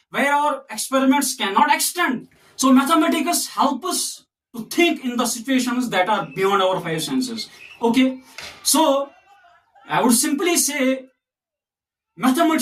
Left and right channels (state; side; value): identical; both; correlation 1.00